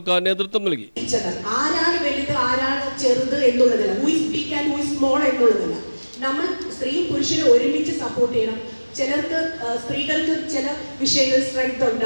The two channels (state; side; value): inverted; both; correlation -1.00